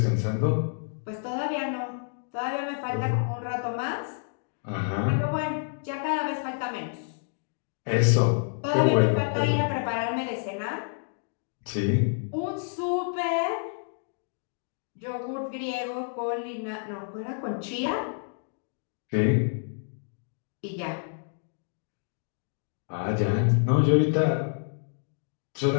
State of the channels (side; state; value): right; silent; digital silence